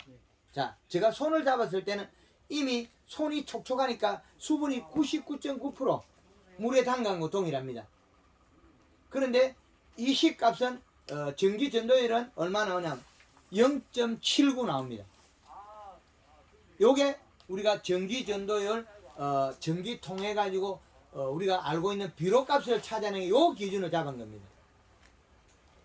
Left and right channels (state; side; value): identical; both; correlation 1.00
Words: 자, 제가 손을 잡았을 때는 이미 손이 촉촉하니까 수분이 99.9% 물에 담간 거 동일합니다. 그런데 이 시값은 전기 전도율은 얼마 나오냐면 0.79 나옵니다. 요게 우리가 전기 전도율 전기 통해 가지고 우리가 알고 있는 비료값을 찾아내는 요 기준을 잡은 겁니다.